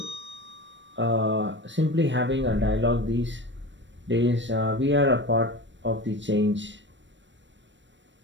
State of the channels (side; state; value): left; late; 0.53 ms